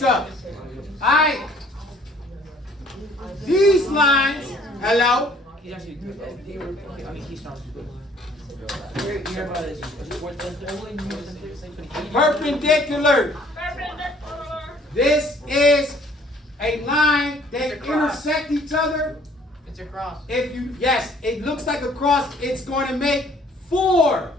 up. Alright. These lines, hello? He's actually good. I mean, he sounds good. You hear about this? Perpendicular. This is a line that intersect each other. It's a cross. If you, yes, it looks like a cross. It's going to make 4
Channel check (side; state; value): both; normal; correlation 0.58